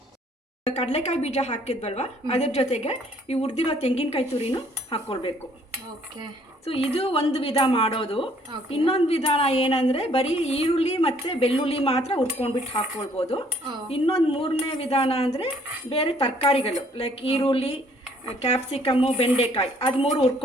ಕಡಲೆಕಾಯಿ ಬೀಜ ಹಾಕಿದ್ವಲ್ವಾ, ಅದ್ರ ಜೊತೆಗೆ ಈ ಹುರಿದಿರೋ ತೆಂಗಿನಕಾಯಿ ತುರಿನೂ ಹಾಕ್ಕೊಳ್ಬೇಕು. ಓಕೆ. ಸೊ ಇದು ಒಂದು ವಿಧ ಮಾಡೋದು. ಇನ್ನೊಂದು ವಿಧಾನ ಏನಂದ್ರೆ ಬರೀ ಈರುಳ್ಳಿ ಮತ್ತೆ ಬೆಳ್ಳುಳ್ಳಿ ಮಾತ್ರ ಹುರ್ಕೊಂಡ್ಬಿಟ್ಟು ಹಾಕ್ಕೊಳ್ಬೋದು. ಇನ್ನೊಂದು 3ನೇ ವಿಧಾನ ಅಂದ್ರೆ ಬೇರೆ ತರಕಾರಿಗಳು ಲೈಕ್ ಈರುಳ್ಳಿ, ಕ್ಯಾಪ್ಸಿಕಮ್ಮು, ಬೆಂಡೆಕಾಯಿ ಅದು 3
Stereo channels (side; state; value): both; normal; correlation 0.62